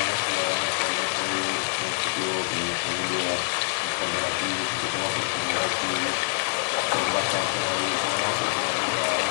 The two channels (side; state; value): right; silent; 58 dB below the other